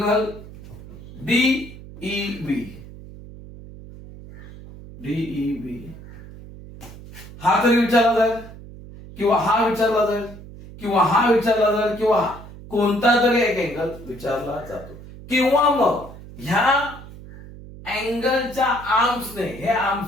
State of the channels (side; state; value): right; noise; hum, 16 dB below the sound